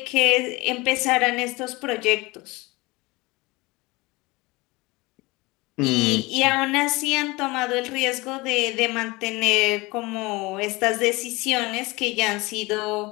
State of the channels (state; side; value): quieter; right; 23.1 dB